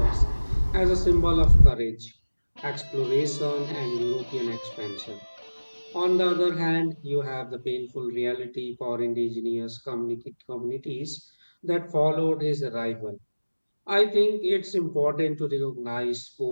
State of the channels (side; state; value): both; inverted; correlation -1.00